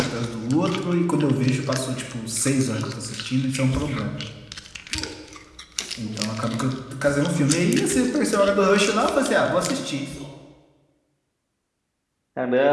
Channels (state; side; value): identical; both; correlation 1.00